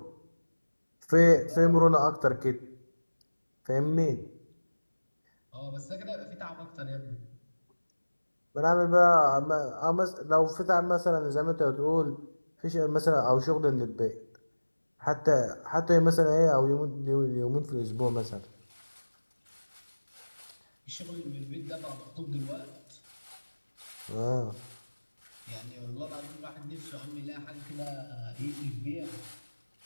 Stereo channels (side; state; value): both; inverted; correlation -1.00